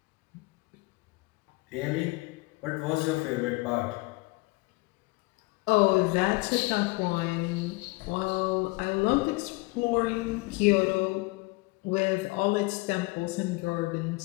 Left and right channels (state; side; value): quieter; right; 25.0 dB